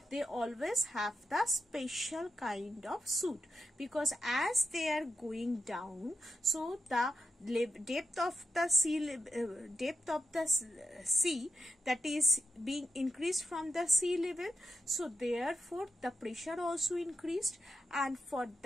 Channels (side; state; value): both; normal; correlation 0.87